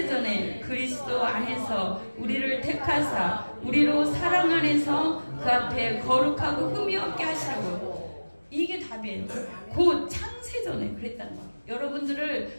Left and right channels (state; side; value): inverted; both; correlation -1.00